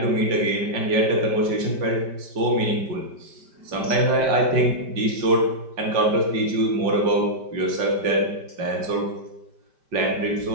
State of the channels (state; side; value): late; left; 5.1 ms